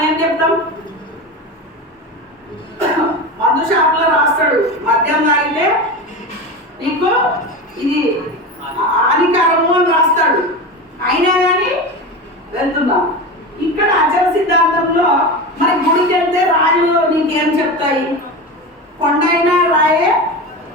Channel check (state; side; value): normal; both; correlation 0.24